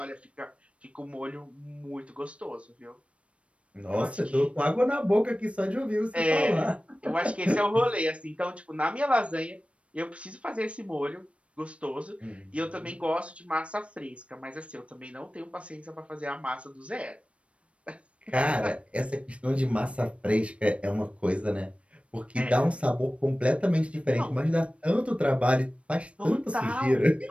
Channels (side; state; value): left; late; 0.062 ms